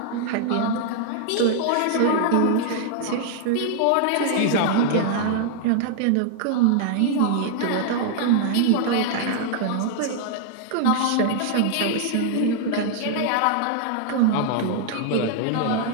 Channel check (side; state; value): both; different; correlation 0.00